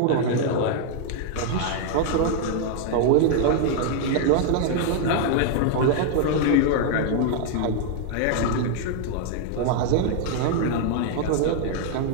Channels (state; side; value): different; both; correlation 0.00